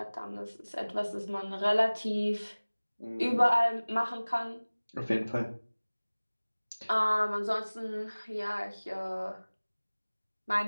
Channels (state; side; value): inverted; both; correlation -1.00